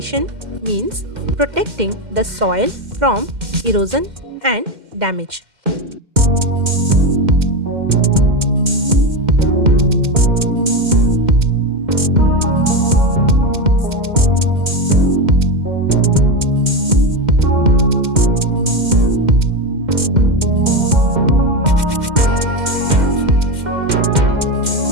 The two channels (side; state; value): left; late; 2.1 ms